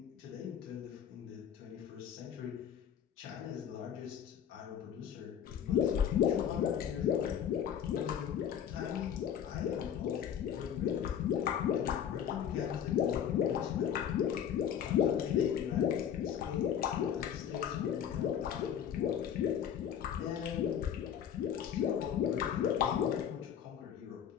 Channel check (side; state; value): right; quieter; 9.0 dB